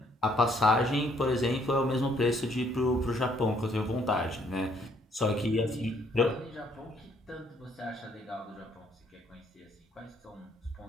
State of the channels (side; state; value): both; normal; correlation 0.66